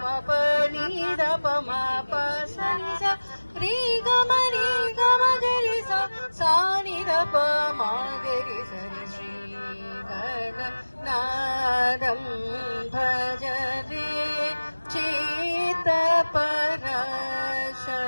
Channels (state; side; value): inverted; both; correlation -1.00